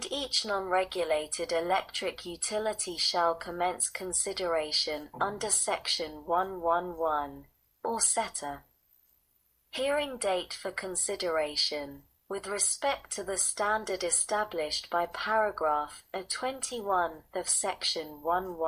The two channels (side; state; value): both; identical; correlation 1.00